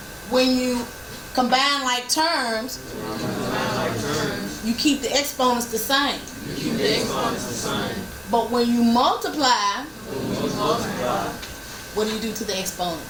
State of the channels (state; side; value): identical; both; correlation 1.00